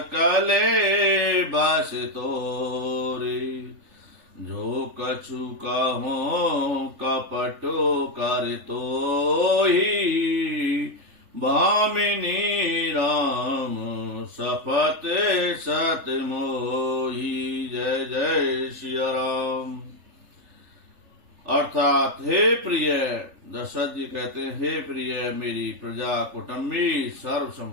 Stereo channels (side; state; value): left; late; 3.3 ms